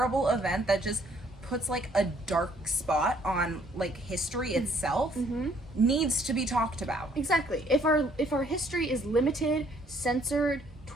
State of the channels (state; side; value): normal; both; correlation 0.64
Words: event that just puts a dark spot on history itself needs to be talked about. Exactly. If our history is limited, censored,